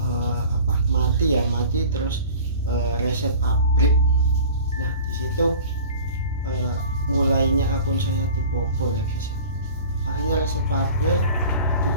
mati terus reset pabrik. Nah di situ mulainya akun saya dibobol ya guys ya. Akhirnya reset pabrik,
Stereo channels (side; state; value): both; inverted; correlation -0.42